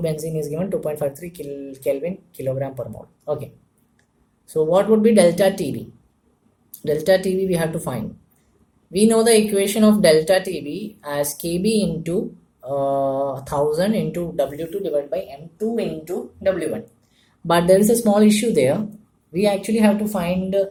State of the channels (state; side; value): identical; both; correlation 1.00